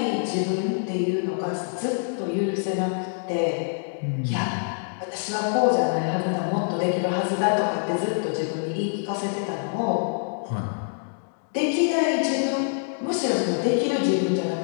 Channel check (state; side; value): silent; right; digital silence